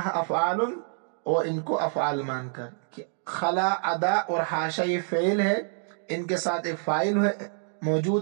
افعال، اور ان کو افعال مان کر۔ خلا، عدا اور حاشا یہ فعل ہے، ان کے ساتھ ایک فاعل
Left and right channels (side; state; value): left; silent; 59 dB below the other